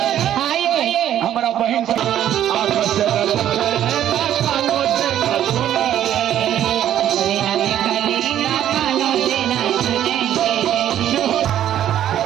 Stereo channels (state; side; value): quieter; left; 11.2 dB